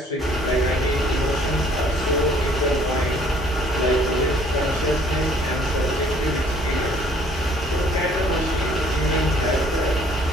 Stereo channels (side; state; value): both; normal; correlation 0.58